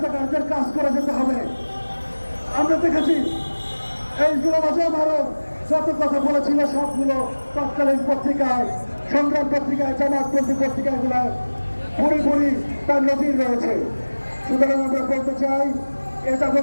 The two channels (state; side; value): inverted; both; correlation -1.00